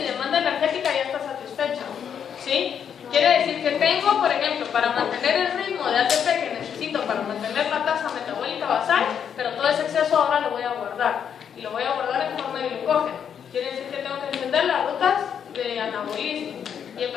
demanda energética ya está satisfecha, ¿sí? Quiere decir que tengo, por ejemplo, para mantener el ritmo de ATP que necesito para mantener la tasa metabólica basal, pero todo ese exceso ahora lo voy a guardar. Y lo voy a guardar en forma de glucógeno. Quiere decir que tengo que encender las rutas de anabolismo y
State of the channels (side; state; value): right; quieter; 8.1 dB